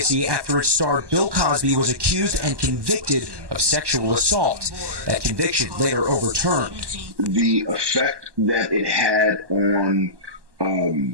after its star Bill Cosby was accused and convicted of sexual assault. That conviction later overturned. The effect that it had on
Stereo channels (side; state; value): left; late; 1.1 ms